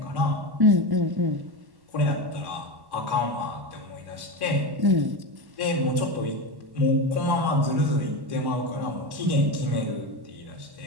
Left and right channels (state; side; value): late; left; 1.1 ms